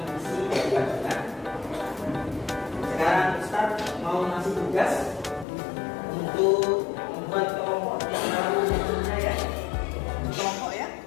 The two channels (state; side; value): drops out; right; at 5.5 s